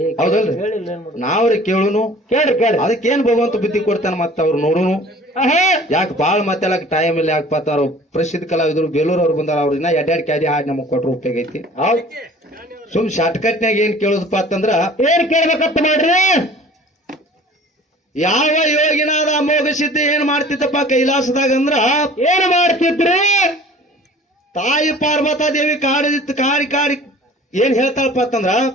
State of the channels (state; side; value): normal; both; correlation 0.47